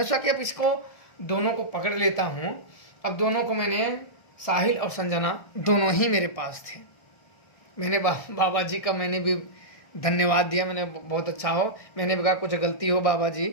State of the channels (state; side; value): late; right; 1.6 ms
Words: सोचा कि अब इसको दोनों को पकड़ लेता हूँ। अब दोनों को मैंने, साहिल और संजना दोनों ही मेरे पास थे। मैंने बाबा जी का मैंने भी धन्यवाद दिया। मैंने बहुत अच्छा हो, मैंने कहा कुछ गलती हो बाबा जी